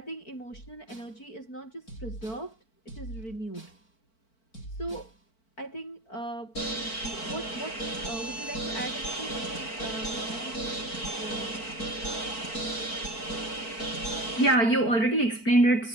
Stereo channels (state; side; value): late; right; 4.5 ms